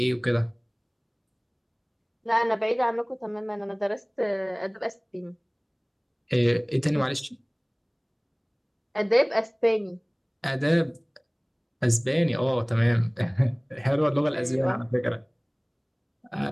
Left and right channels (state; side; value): identical; both; correlation 1.00